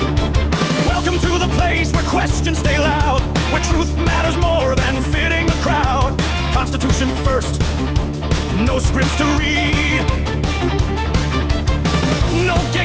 Welcome to the place where questions stay loud, where truth matters more than fitting the crowd. Constitution first, no scripts to read. No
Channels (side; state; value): both; identical; correlation 1.00